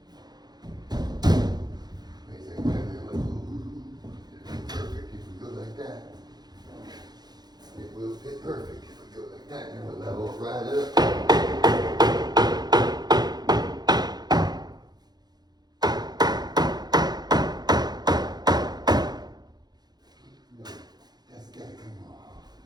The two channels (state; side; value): late; left; 0.20 ms